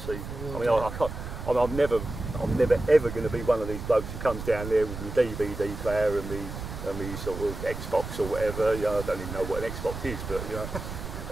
see, I mean, I can't. I'm never ever going to be one of these blokes who comes down there with my DVD player and me sort of Xbox or whatever. You know, I don't even know what an Xbox is, but you know,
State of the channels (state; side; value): noise; right; rumble, 8 dB below the sound